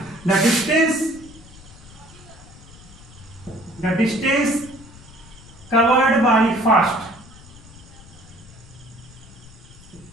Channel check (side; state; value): left; noise; rumble, 20 dB below the sound